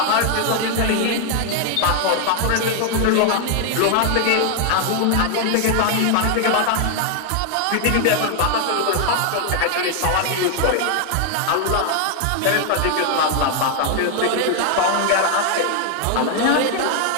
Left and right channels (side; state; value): both; different; correlation 0.00